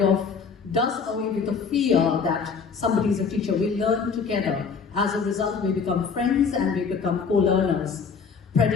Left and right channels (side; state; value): right; quieter; 5.6 dB